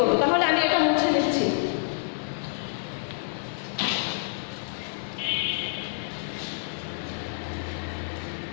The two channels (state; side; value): silent; right; digital silence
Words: তাহলে আমি এটা মুছে নিচ্ছি।